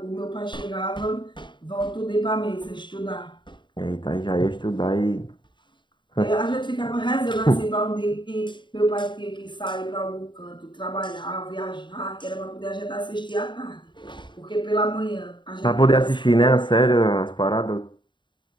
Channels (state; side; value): late; right; 0.23 ms